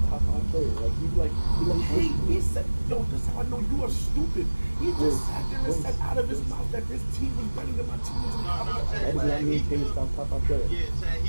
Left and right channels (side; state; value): both; inverted; correlation -1.00